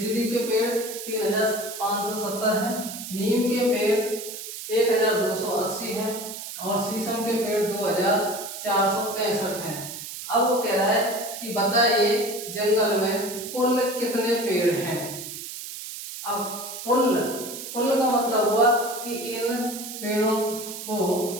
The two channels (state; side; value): noise; right; hiss, 9 dB below the sound